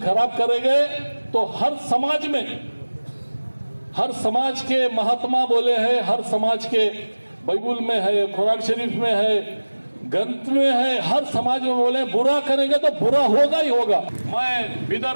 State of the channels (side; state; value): both; inverted; correlation -1.00